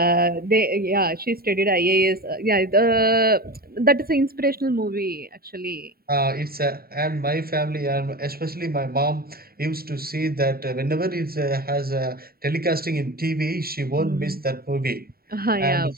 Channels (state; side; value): late; left; 0.44 ms